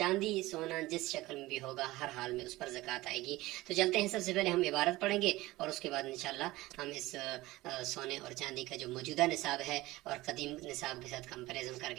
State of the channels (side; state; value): left; quieter; 18.7 dB